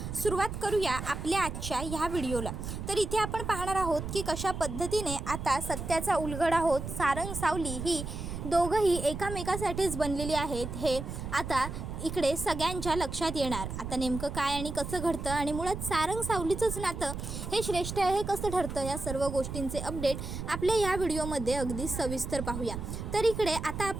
सुरुवात करूया आपल्या आजच्या ह्या व्हिडिओला। तर इथे आपण पाहणार आहोत की कशा पद्धतीने आता सत्याचा उलगडा होत सारंग सावली ही दोघंही एकामेकासाठीच बनलेली आहेत हे आता इकडे सगळ्यांच्या लक्षात येणार। आता नेमकं काय आणि कसं घडतं आणि मुळात सारंग सावलीचंच नातं हे श्रेष्ठ आहे हे कसं ठरतं, या सर्व गोष्टींचे अपडेट आपल्या या व्हिडिओमध्ये अगदी सविस्तर पाहूया। तर इकडे आता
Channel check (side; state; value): right; noise; rumble, 6 dB below the sound